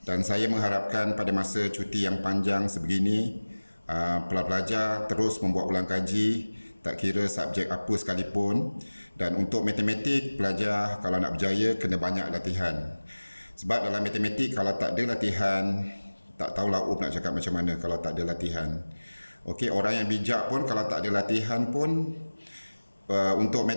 Dan saya mengharapkan pada masa cuti yang panjang sebegini, pelajar terus membuat ulang kaji, tak kira subjek apa sekalipun. Dan untuk matematik, pelajar kalau nak berjaya kena banyak latihan. Sebab dalam matematik kalau tak ada latihan, tak tahulah nak cakap macam mana kalau tak ada latihan. Okey, orang yang bijak pun kalau tak ada latihan pun untuk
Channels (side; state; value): both; inverted; correlation -1.00